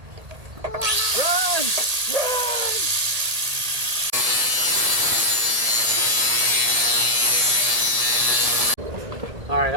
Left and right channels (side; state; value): left; late; 1.7 ms